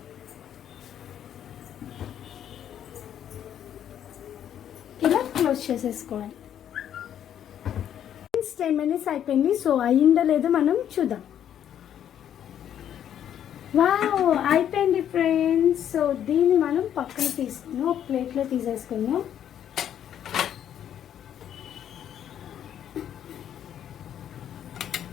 ఇలా క్లోజ్ చేసేసుకోవాలి. 10 minutes అయిపోయింది. సో అయిందో లేదో మనం చూద్దాం. వావ్, అయిపోయింది ఫ్రెండ్స్. సో దీన్ని మనం పక్కన తీసుకున్నాం, ఒక ప్లేట్లో తీసేసుకున్నాం.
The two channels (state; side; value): quieter; right; 10.0 dB